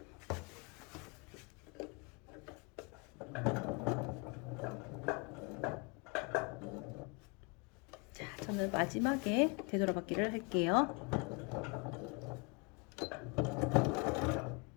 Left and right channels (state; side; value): quieter; right; 31.5 dB